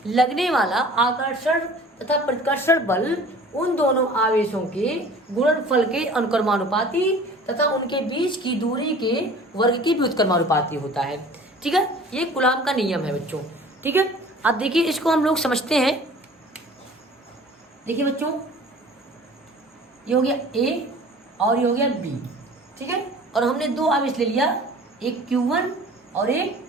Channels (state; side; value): normal; both; correlation 0.46